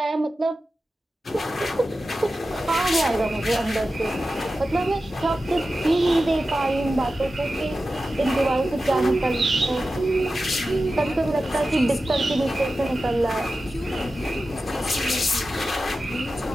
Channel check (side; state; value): both; normal; correlation 0.93